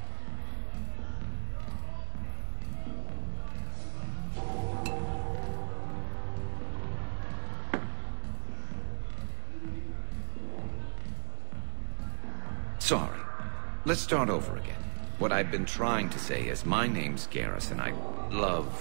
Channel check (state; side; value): silent; left; 55 dB below the other